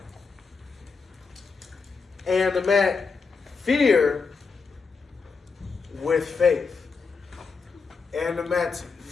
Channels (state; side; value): quieter; right; 4.9 dB